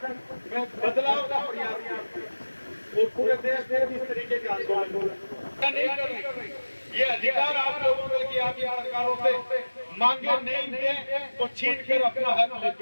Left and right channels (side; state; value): both; inverted; correlation -1.00